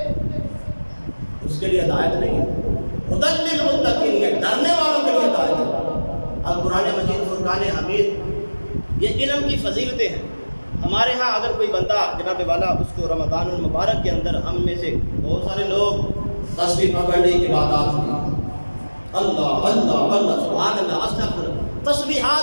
اس کے لیے ہدایت نہیں ہے. ھدی للمتقین، یہ ڈرنے والوں کے لیے ہدایت ہے. اب قرآن مجید فرقان حمید یہ علم کی فضیلتیں ہیں. ہمارے ہاں اگر کوئی بندہ جناب والا اس کو رمضان المبارک کے اندر، ہم میں سے بہت سارے لوگ تسبیح پکڑنے کی عبادات میں اللہ اللہ اللہ سبحان اللہ استغفر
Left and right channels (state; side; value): inverted; both; correlation -1.00